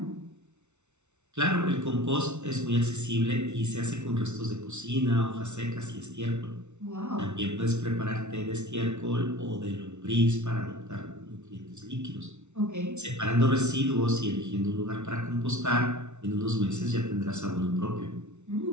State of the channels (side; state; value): left; late; 0.82 ms